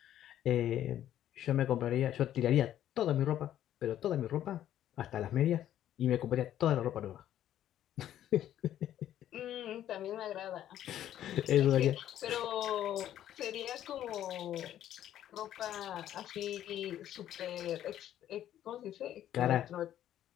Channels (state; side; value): quieter; right; 11.6 dB